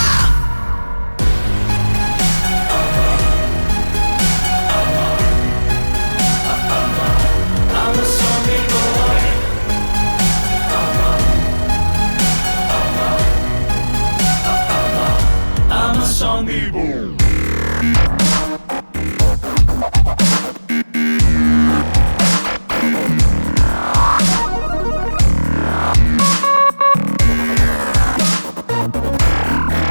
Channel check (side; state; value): both; inverted; correlation -1.00